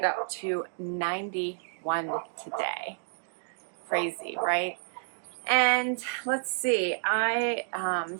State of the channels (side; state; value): left; silent; digital silence